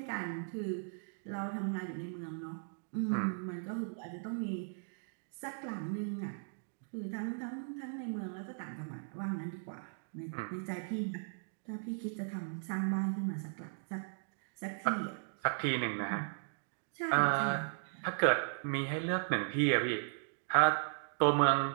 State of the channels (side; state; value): left; silent; digital silence